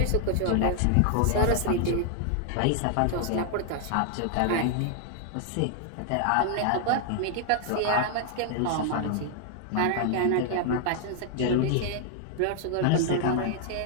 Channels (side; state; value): both; different; correlation 0.00